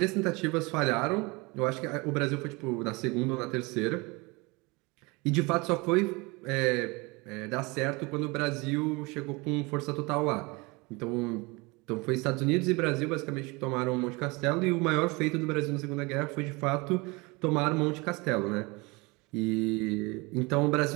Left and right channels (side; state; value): left; quieter; 26.0 dB